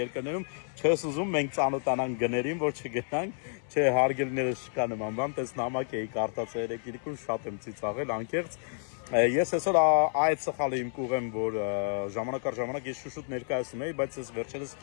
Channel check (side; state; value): right; silent; 58 dB below the other